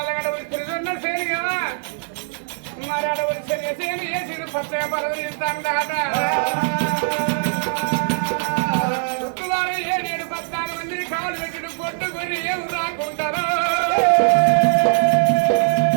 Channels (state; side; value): silent; left; 65 dB below the other